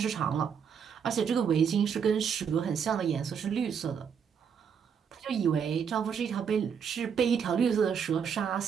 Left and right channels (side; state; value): left; quieter; 7.1 dB